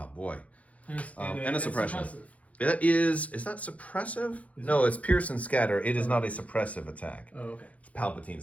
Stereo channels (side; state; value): right; late; 0.067 ms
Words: Boy. And a suppression. It is that suppressive? No, it's Pierce and Scatter. It is not a suppressive attack. Oh, okay. It's